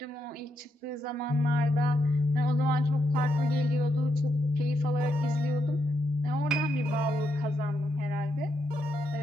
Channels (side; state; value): both; normal; correlation 0.80